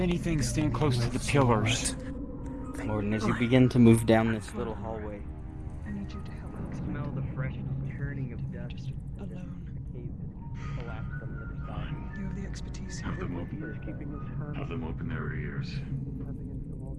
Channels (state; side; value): identical; both; correlation 1.00